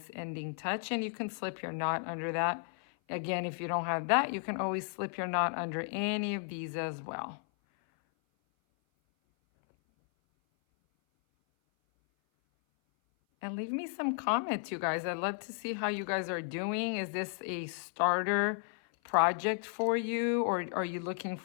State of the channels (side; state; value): right; silent; 55 dB below the other